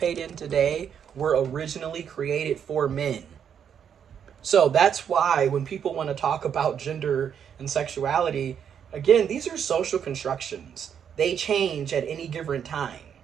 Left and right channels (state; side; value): quieter; left; 8.1 dB